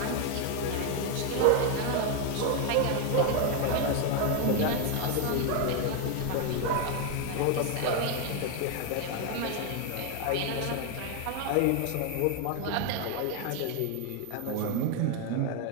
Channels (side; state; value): both; different; correlation 0.01